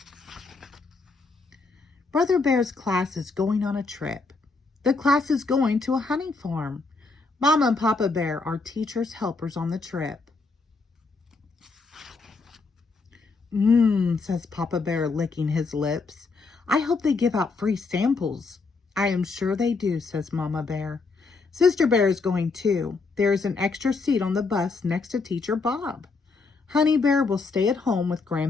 Brother Bear's class is going on a trip. The class is going to a honey farm. Mama and Papa Bear are teachers' helpers on the trip. Says Papa Bear, licking his lips. I hope they give out free samples. I am sure they do, says Mama Bear. Sister Bear is going too. There is an extra seat on the bus next to Teacher Bob. Honey Bear will stay at home with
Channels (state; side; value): quieter; right; 4.1 dB